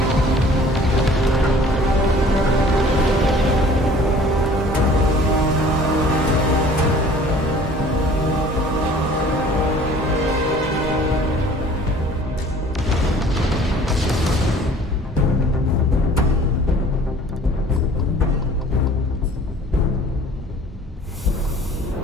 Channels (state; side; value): normal; both; correlation 0.50